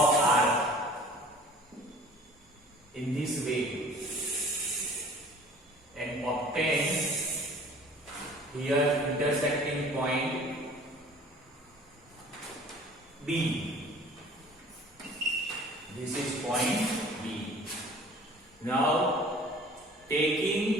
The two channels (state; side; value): normal; both; correlation 0.48